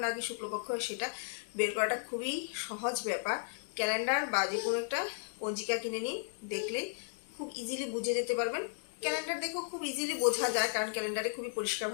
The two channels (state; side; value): silent; right; digital silence